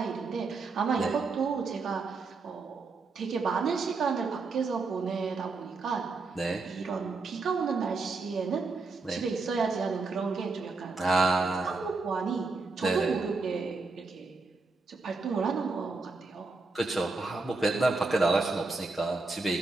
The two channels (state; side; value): quieter; left; 3.9 dB